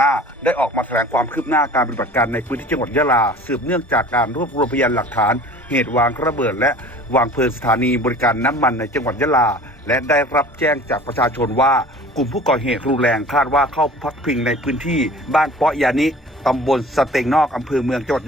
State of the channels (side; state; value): both; normal; correlation 0.45